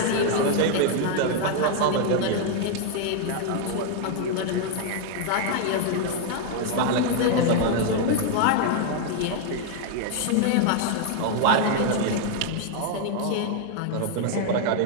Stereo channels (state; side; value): different; both; correlation 0.00